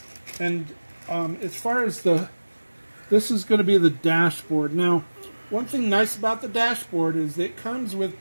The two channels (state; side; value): inverted; both; correlation -1.00